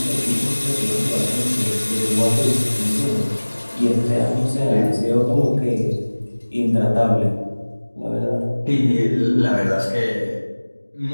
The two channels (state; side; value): inverted; both; correlation -1.00